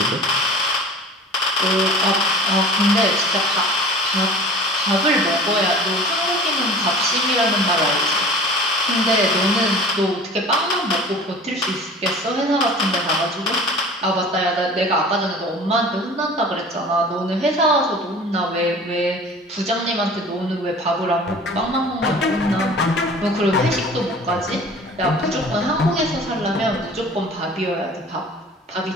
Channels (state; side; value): normal; both; correlation 0.42